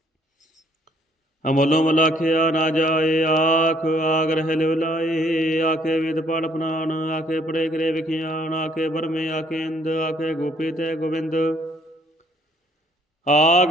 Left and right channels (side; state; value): both; normal; correlation 0.63